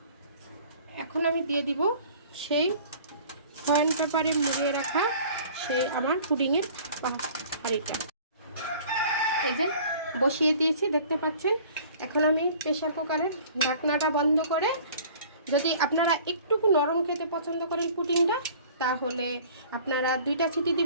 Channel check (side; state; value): both; inverted; correlation -0.49